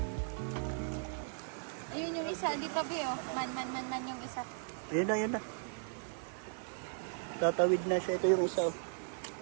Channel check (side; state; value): left; silent; 53 dB below the other